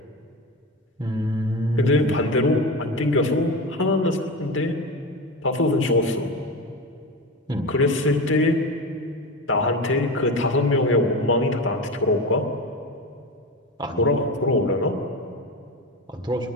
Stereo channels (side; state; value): both; normal; correlation 0.24